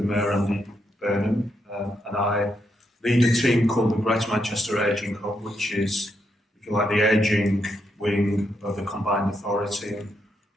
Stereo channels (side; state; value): both; normal; correlation 0.80